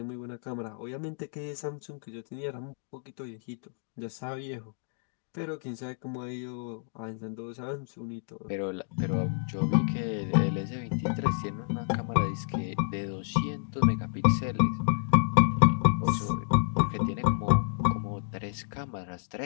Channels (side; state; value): right; silent; digital silence